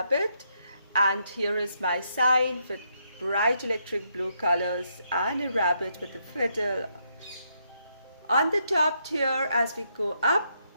And here is my sign with bright electric blue colors and a rabbit with a fiddle On the top tier, as we go up,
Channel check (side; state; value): both; inverted; correlation -0.77